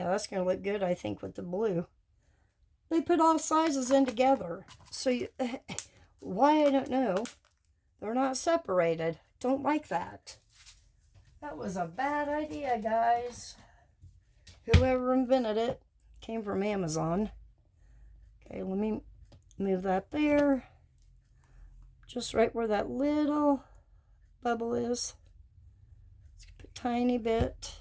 that's going to look good, I think, with the blue. They put all sizes in together. So, you, why, I don't know. They're not separated. Don't like that. That was a bad idea, guys. Whoever invented it came from Amazon. Okay, let me move that there. Just right where that little bubble is. Let's put a tiny bit.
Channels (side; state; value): both; identical; correlation 1.00